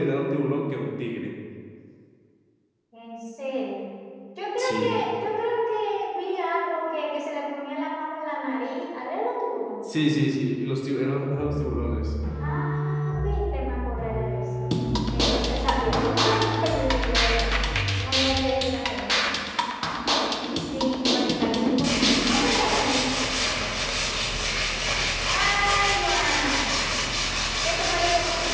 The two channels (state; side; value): identical; both; correlation 1.00